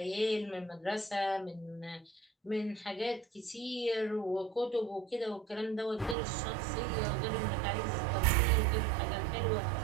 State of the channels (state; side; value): drops out; left; at 6.2 s